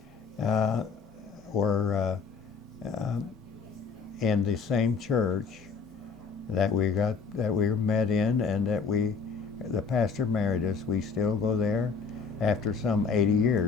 in the same church that we met in, and the pastor married us. We still go there after some 80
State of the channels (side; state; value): right; quieter; 5.3 dB